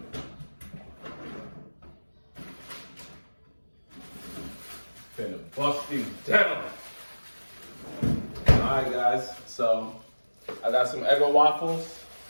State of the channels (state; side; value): inverted; both; correlation -1.00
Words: Finna bust these down. Alright guys, so I got some Eggo waffles.